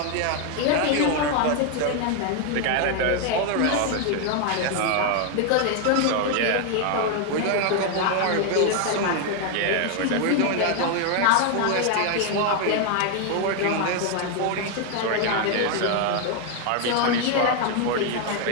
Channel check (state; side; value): different; both; correlation 0.01